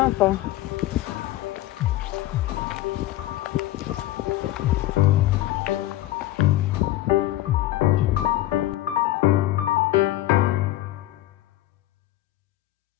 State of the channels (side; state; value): right; quieter; 15.2 dB